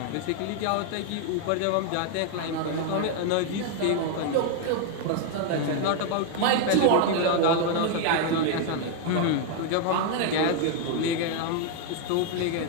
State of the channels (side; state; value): both; different; correlation 0.01